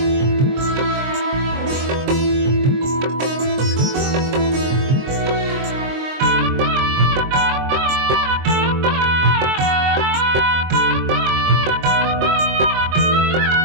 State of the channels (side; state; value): left; late; 23 ms